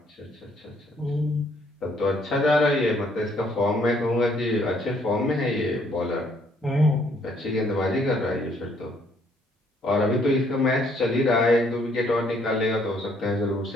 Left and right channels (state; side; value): normal; both; correlation 0.66